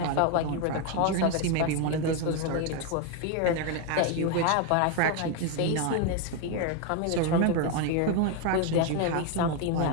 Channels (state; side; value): different; both; correlation 0.01